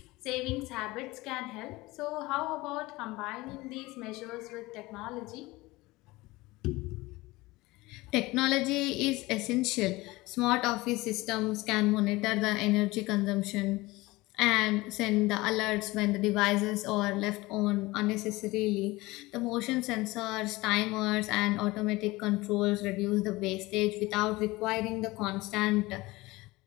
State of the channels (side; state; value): right; quieter; 20.8 dB